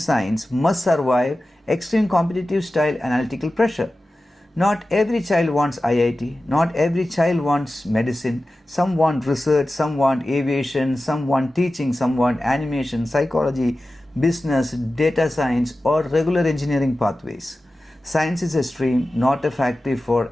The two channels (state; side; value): normal; both; correlation 0.95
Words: must survive extreme competitive style analytical pressure? Not every child wants IIT, not every child wants medicine. Some want research, some want aviation, some want teaching, some want animation, psychology, business, data science or regular engineering pathways. Science is a stream, not a factory for